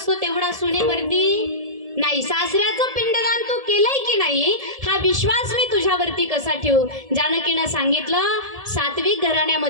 तेवढा सुनेवरती नाही. सासऱ्याचं पिंडदान तू केलंय की नाही हा विश्वास मी तुझ्यावरती कसा ठेवू? जानकीनं सांगितलं, सात्विक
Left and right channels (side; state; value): left; late; 1.7 ms